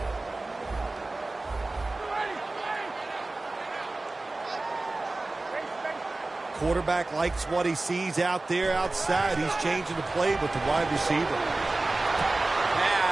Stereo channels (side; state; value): left; quieter; 3.1 dB